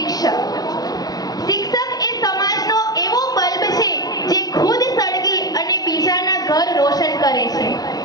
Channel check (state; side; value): late; right; 0.19 ms